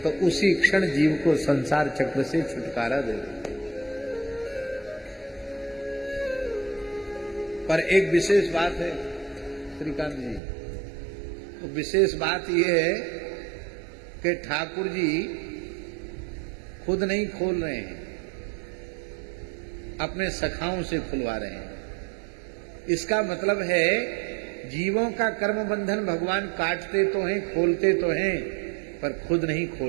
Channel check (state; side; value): drops out; left; at 10.4 s